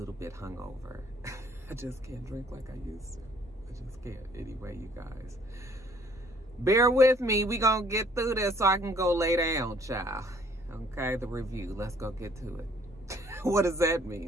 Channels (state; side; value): normal; both; correlation 0.59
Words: bit hungover. I just can't drink like I used to. I just can't. Anyway, you guys, bear with me. We gonna get through this so I can go lay down, child. Okay, the review. Let's go get to it. What does that